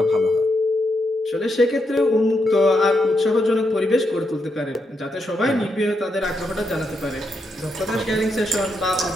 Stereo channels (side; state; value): both; normal; correlation 0.82